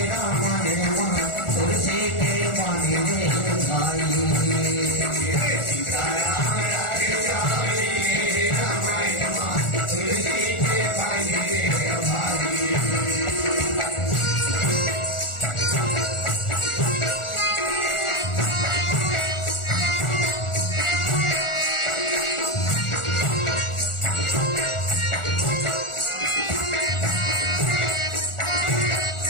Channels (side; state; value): right; late; 1.4 ms